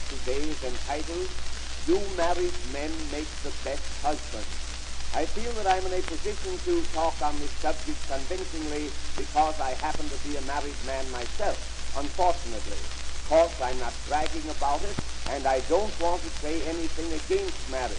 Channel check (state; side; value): identical; both; correlation 1.00